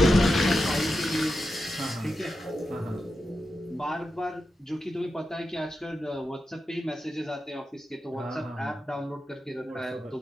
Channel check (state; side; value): normal; both; correlation 0.89